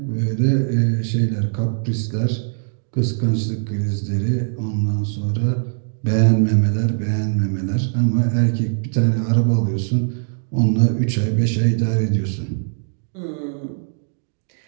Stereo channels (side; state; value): left; silent; digital silence